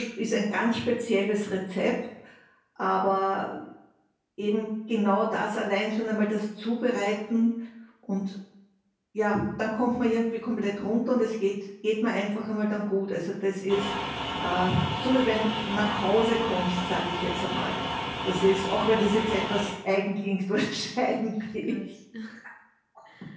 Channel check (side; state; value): both; identical; correlation 1.00